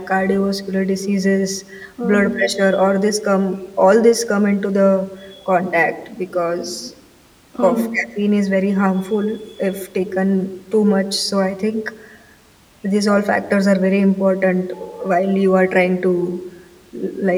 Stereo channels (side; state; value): both; identical; correlation 1.00